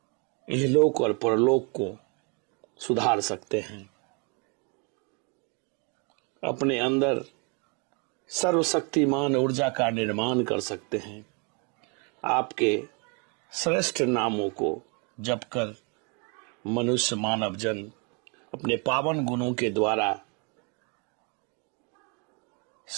इहलोक और परलोक को सुधार सकते हैं, अपने अंदर सर्वशक्तिमान ऊर्जा का निर्माण कर सकते हैं। आपके श्रेष्ठ नामों को जपकर मनुष्य मानव जन अपने पावन गुणों के द्वारा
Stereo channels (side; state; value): left; quieter; 34.4 dB